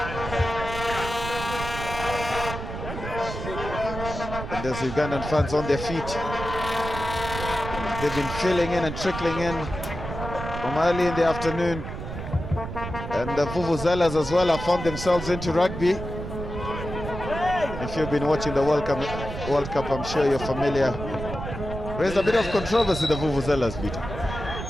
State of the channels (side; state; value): right; noise; rumble, 7 dB below the sound